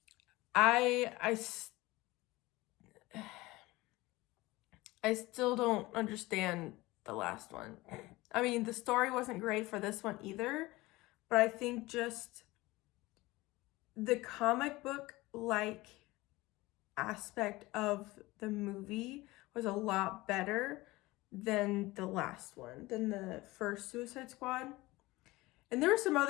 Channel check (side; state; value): right; quieter; 20.2 dB